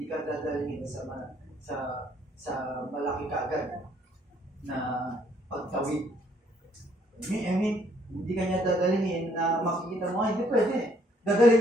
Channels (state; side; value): normal; both; correlation 0.66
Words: ka dadalhin sa malaki kaagad na pagtawid. I mean, hindi ka niya dadalhin na makikita mo, hindi pwede.